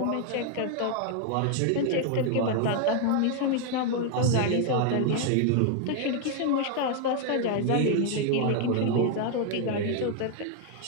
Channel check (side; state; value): both; different; correlation 0.00